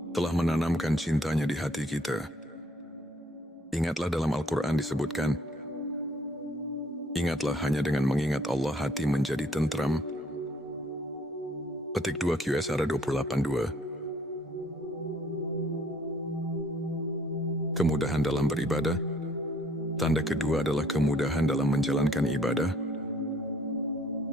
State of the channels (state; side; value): normal; both; correlation 0.61